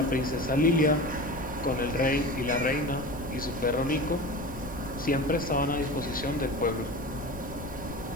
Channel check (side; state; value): left; noise; rumble, 13 dB below the sound